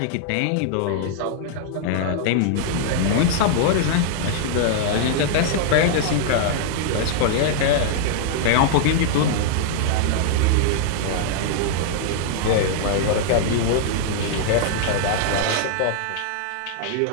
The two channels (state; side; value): different; both; correlation -0.01